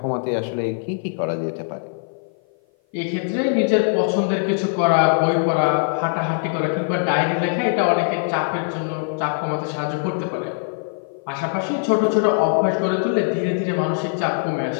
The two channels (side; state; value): right; silent; 55 dB below the other